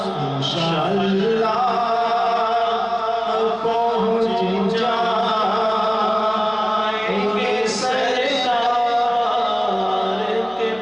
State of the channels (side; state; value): right; noise; hum, 29 dB below the sound